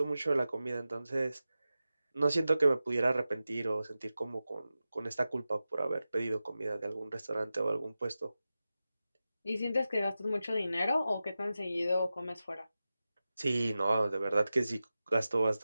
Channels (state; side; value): inverted; both; correlation -0.93